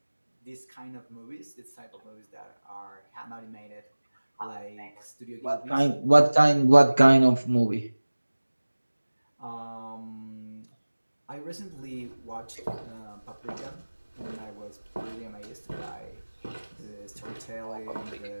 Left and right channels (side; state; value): both; inverted; correlation -1.00